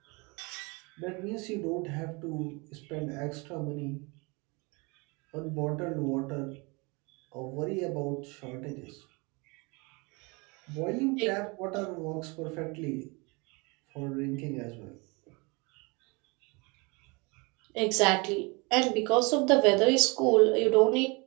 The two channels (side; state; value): left; quieter; 28.3 dB